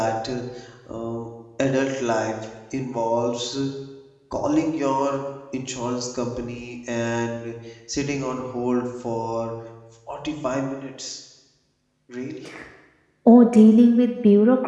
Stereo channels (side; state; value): both; identical; correlation 1.00